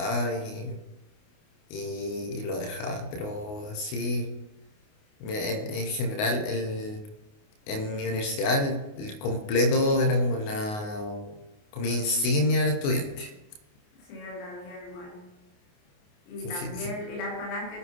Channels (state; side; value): late; right; 28 ms